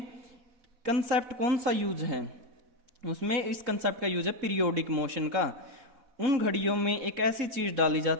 कंसेप्ट कौन सा यूज है? उसमें इस कंसेप्ट का यूज है पीरियोडिक मोशन का। उन घड़ियों में एक ऐसी चीज डाली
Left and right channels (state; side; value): late; left; 4.1 ms